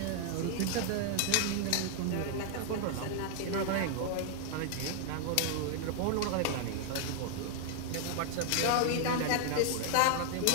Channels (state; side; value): different; both; correlation 0.00